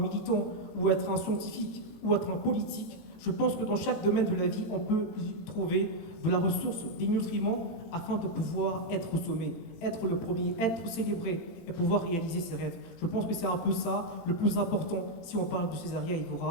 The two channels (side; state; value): right; late; 18 ms